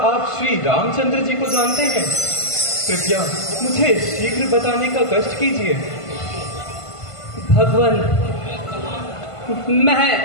श्री रामचंद्र जी को जानते हैं? कृपया मुझे शीघ्र बताने का कष्ट कीजिए। भगवान, मैं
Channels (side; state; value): right; late; 1.5 ms